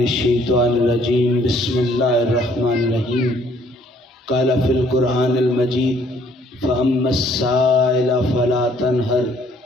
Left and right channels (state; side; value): normal; both; correlation 0.62